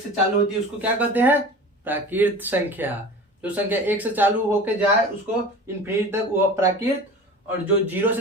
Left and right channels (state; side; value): normal; both; correlation 0.37